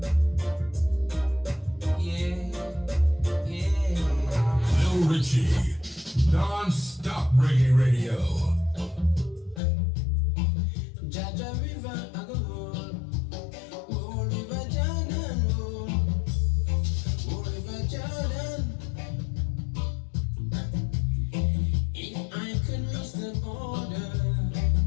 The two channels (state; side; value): drops out; right; at 9.6 s